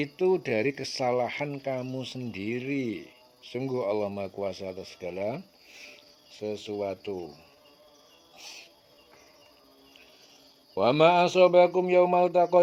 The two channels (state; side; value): identical; both; correlation 1.00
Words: dari kesalahan kamu sendiri. Sungguh Allah Maha Kuasa atas segala sesuatu. Wa ma asobakum yaumal